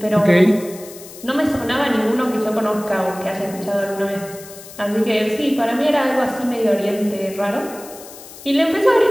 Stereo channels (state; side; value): noise; left; hiss, 17 dB below the sound